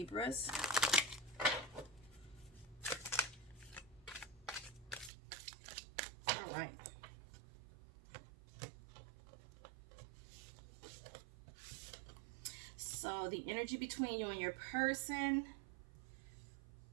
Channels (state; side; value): drops out; left; at 5.1 s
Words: All right. So the energy between you and your person